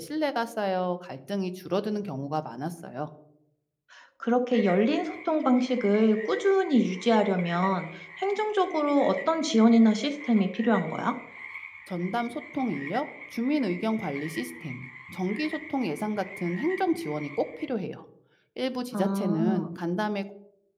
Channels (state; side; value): identical; both; correlation 1.00